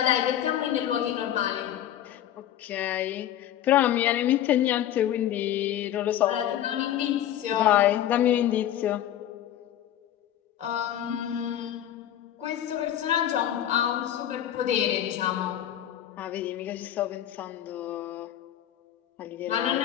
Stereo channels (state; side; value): quieter; right; 11.5 dB